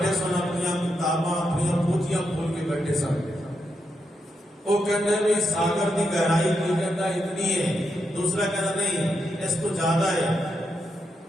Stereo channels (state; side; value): normal; both; correlation 0.83